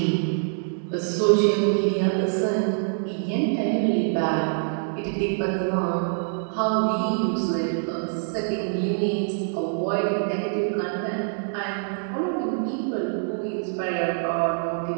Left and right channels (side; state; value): left; silent; digital silence